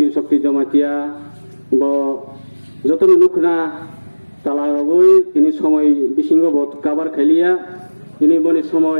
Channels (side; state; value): both; inverted; correlation -1.00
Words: শক্তি জমাতিয়া ব যতন নুখনা তালাগৈ তিনি সময় বিসিঙ্গ বত কাবার খাইলিয়া তিনি বনি